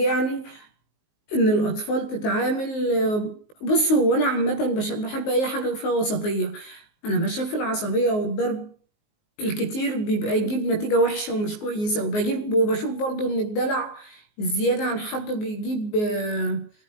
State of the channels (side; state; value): right; late; 19 ms